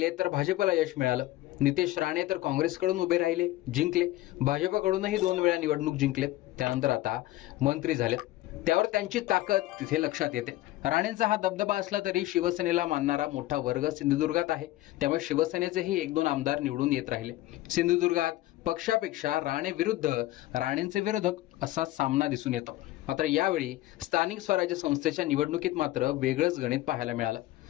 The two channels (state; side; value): quieter; right; 16.5 dB